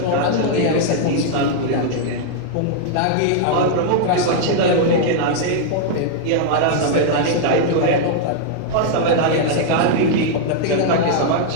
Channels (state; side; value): different; both; correlation -0.01